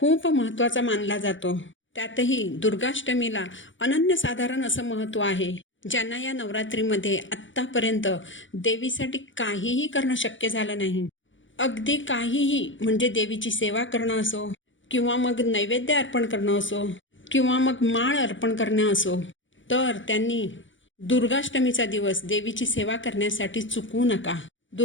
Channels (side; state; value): right; late; 0.56 ms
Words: महत्त्वाचा मानला जातो. त्यातही दुर्गाष्टमीला अनन्यसाधारण असं महत्त्व आहे. ज्यांना या नवरात्रीमध्ये आत्तापर्यंत देवीसाठी काहीही करणं शक्य झालं नाही, अगदी काहीही म्हणजे देवीची सेवा करणं असो किंवा मग नैवेद्य अर्पण करणं असो किंवा मग माळ अर्पण करणं असो, तर त्यांनी दुर्गाष्टमीचा दिवस देवीची सेवा करण्यासाठी चुकवू नका.